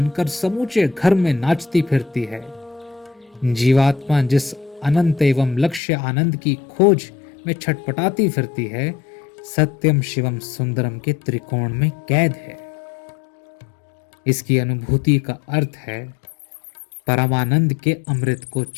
समूचे घर में नाचती फिरती है। जीवात्मा जिस अनंत एवं लक्ष्य आनंद की खोज में छटपटाती फिरती है, सत्यम शिवम सुंदरम के त्रिकोण में कैद है। इसकी अनुभूति का अर्थ है परमानंद के अमृत को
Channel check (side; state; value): right; drops out; at 5.8 s